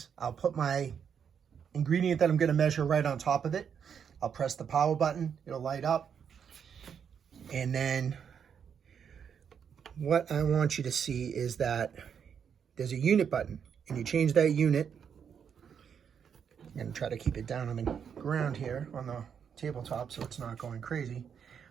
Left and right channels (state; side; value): quieter; left; 7.5 dB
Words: I'll put my ingredient that I'm going to measure right on top of it. I'll press the power button. It'll light up. And then what I want you to see is that there's a unit button. And you change that unit. I'm going to try to keep it down on the ground here on the tabletop so it's not going crazy.